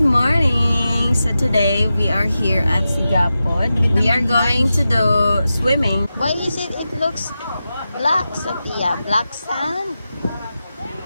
morning! So today we are here at Sigapod. We are going to do swimming. Why is it looks black, Sophia? Black sand?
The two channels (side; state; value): both; inverted; correlation -0.92